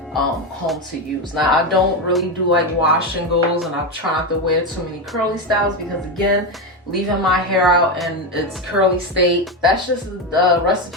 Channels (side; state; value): both; normal; correlation 0.13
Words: comb to use. Now, I don't really do like wash and goes, and I try not to wear too many curly styles because, again, leaving my hair out in its curly state, that's just a